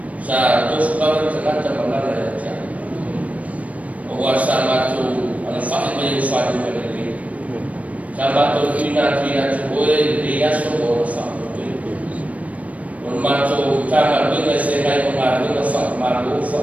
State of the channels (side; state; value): left; late; 0.067 ms